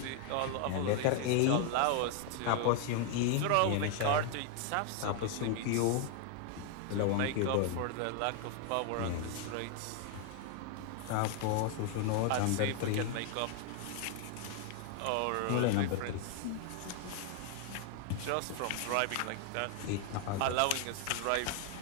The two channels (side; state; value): both; different; correlation 0.00